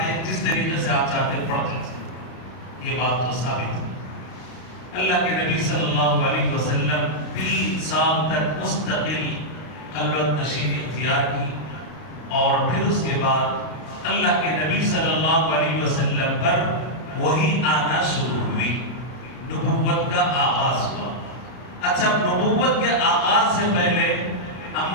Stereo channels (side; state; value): right; late; 32 ms